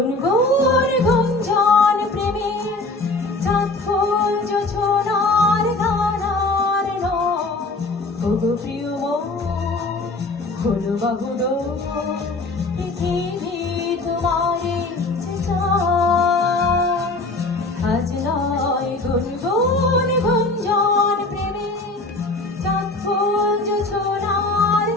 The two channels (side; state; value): right; quieter; 3.2 dB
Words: গুঞ্জন প্রেমে চাঁদ ফুল জোছনার ধারার নয় ওগো প্রিয় মন হলো বাহুল পৃথিবী তোমারে যে চায় আজ নয় গুনগুন গুঞ্জন প্রেমে চাঁদ ফুল জোছনার